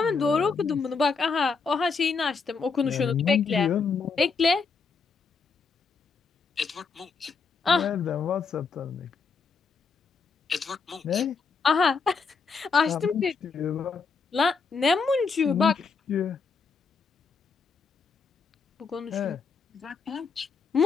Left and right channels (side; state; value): right; quieter; 4.9 dB